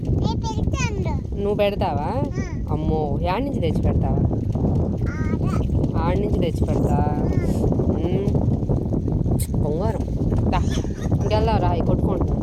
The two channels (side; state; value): both; identical; correlation 1.00